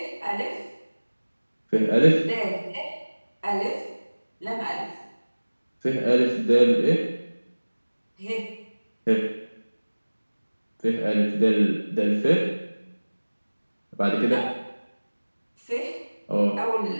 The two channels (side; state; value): both; inverted; correlation -1.00